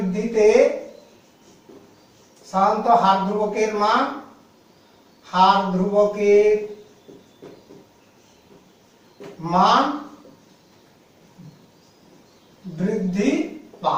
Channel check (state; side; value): identical; both; correlation 1.00